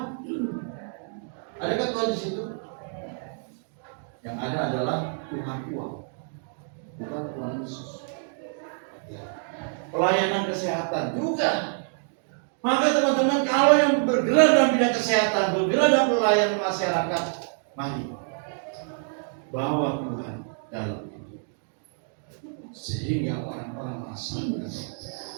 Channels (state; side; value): silent; left; 60 dB below the other